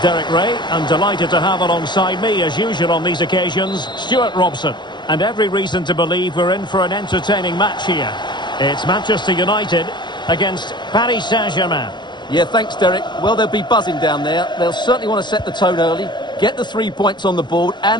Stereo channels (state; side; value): late; right; 0.22 ms